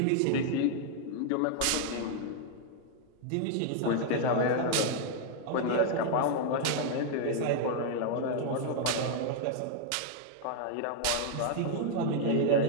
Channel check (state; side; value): different; both; correlation 0.00